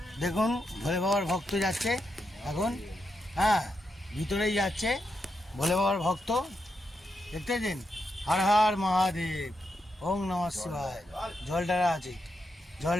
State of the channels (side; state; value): both; normal; correlation 0.84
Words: দেখুন ভোলে বাবার ভক্ত যাচ্ছে এখন, হ্যাঁ ভিতরেই যাচ্ছে ভোলে বাবার ভক্ত, দেখতে পাচ্ছেন? হর হর মহাদেব, ওং নমঃ শিবায়। জলডারা আছে,